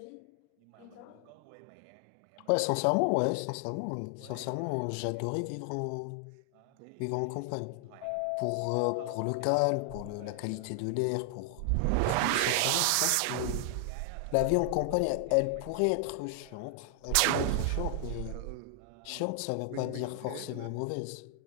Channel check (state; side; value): different; both; correlation 0.00